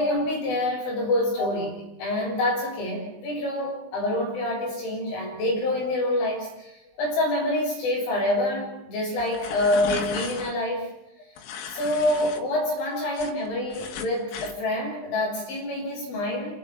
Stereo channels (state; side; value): late; right; 20 ms